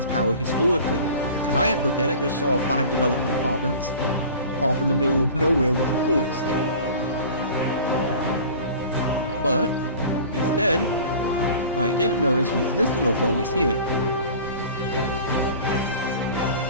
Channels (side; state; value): both; inverted; correlation -0.41